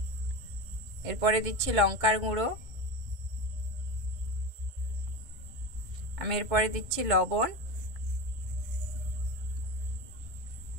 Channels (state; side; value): late; left; 1.6 ms